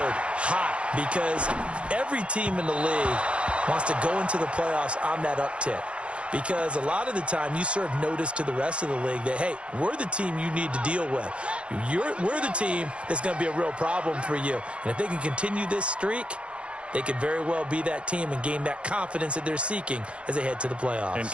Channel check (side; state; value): left; late; 0.060 ms